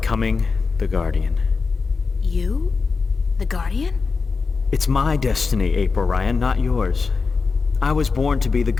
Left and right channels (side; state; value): right; quieter; 4.7 dB